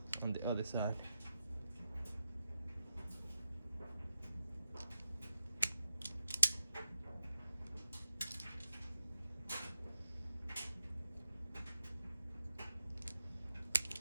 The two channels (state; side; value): inverted; both; correlation -0.87